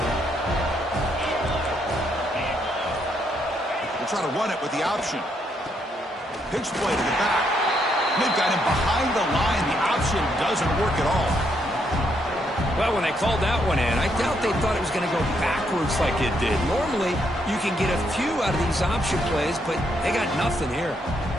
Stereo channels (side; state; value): both; normal; correlation 0.75